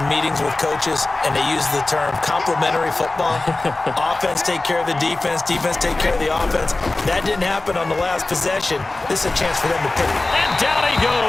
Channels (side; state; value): right; quieter; 3.1 dB